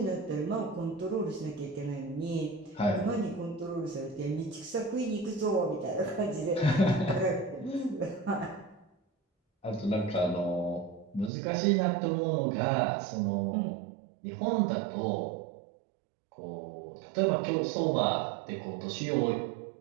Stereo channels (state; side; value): drops out; left; at 11.3 s